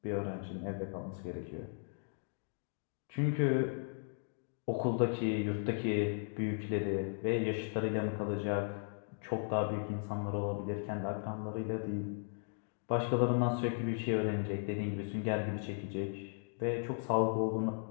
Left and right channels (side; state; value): right; silent; digital silence